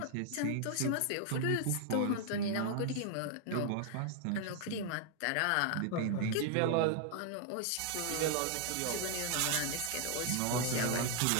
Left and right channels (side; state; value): both; different; correlation 0.00